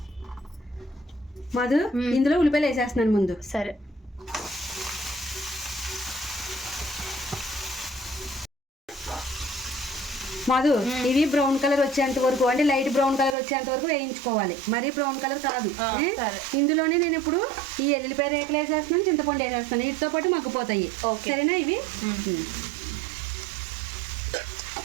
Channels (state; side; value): drops out; left; at 13.4 s